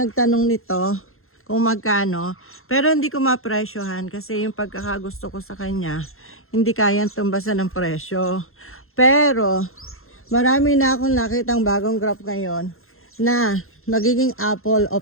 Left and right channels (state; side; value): late; right; 0.61 ms